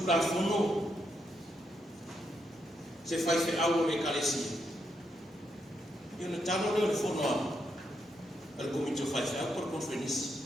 la fono se fai fe au me kalesi io ne tano le fono al comincio fai fe por conferenza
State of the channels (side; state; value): both; normal; correlation 0.80